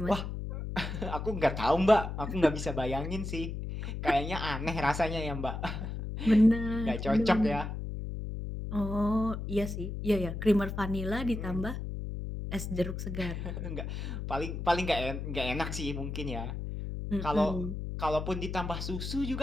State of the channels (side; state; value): left; noise; hum, 5 dB below the sound